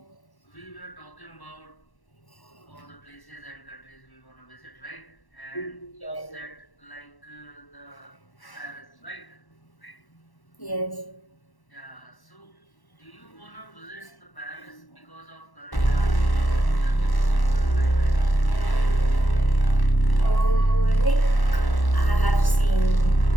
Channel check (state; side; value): late; right; 1.1 ms